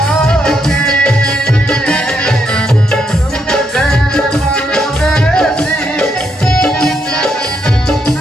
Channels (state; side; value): normal; both; correlation 0.78